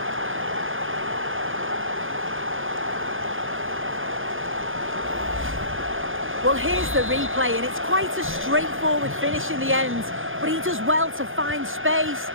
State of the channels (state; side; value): late; left; 0.59 ms